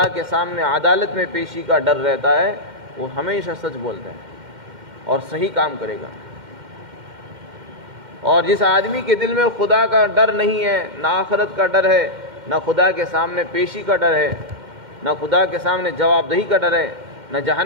کے سامنے عدالت میں پیشی کا ڈر رہتا ہے. وہ ہمیشہ سچ بولتا ہے اور صحیح کام کرے گا. اور جس آدمی کے دل میں خدا کا ڈر نہیں ہے، نہ آخرت کا ڈر ہے، نہ خدا کے سامنے پیشی کا ڈر ہے، نہ خدا کے سامنے جواب دہی کا ڈر ہے، نہ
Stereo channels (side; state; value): left; late; 2.1 ms